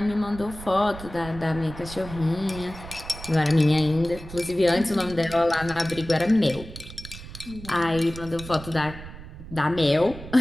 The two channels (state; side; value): noise; right; rumble, 14 dB below the sound